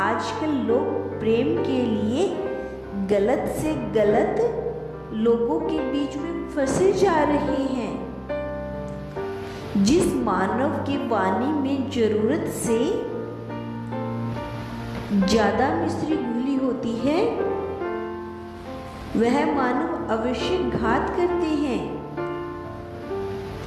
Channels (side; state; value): both; identical; correlation 1.00